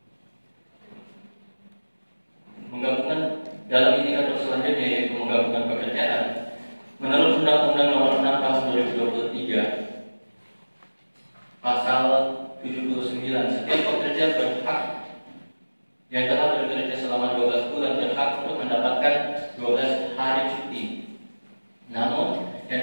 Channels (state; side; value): inverted; both; correlation -1.00